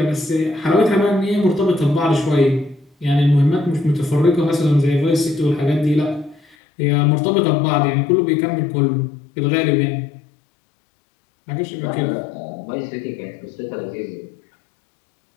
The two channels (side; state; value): right; drops out; at 6.6 s